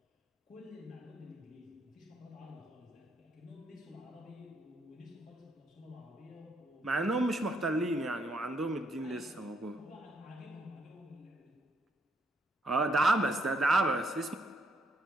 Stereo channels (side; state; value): both; normal; correlation 0.74